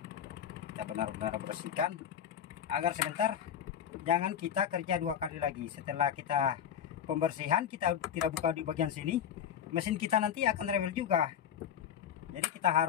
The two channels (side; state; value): right; quieter; 9.0 dB